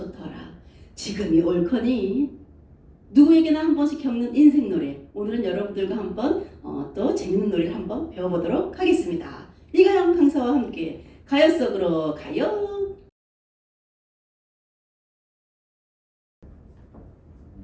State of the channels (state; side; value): identical; both; correlation 1.00